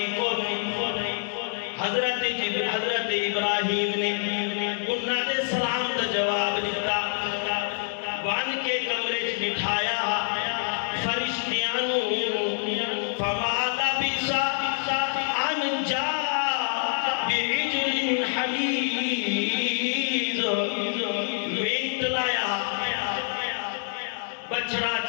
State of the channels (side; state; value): right; silent; 61 dB below the other